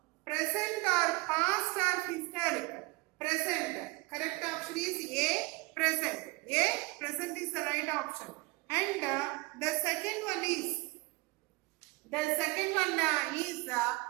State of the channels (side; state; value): left; quieter; 24.9 dB